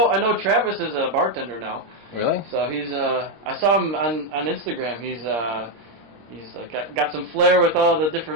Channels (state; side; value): late; left; 26 ms